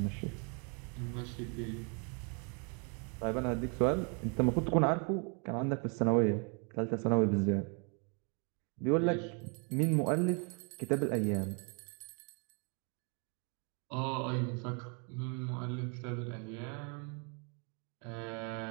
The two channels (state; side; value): quieter; left; 36.5 dB